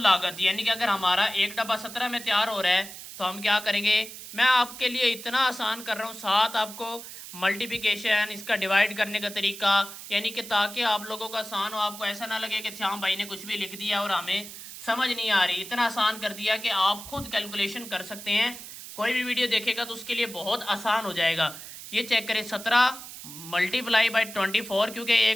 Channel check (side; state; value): right; noise; hiss, 13 dB below the sound